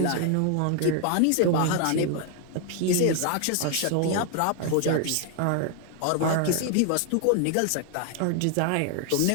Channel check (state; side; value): different; both; correlation 0.00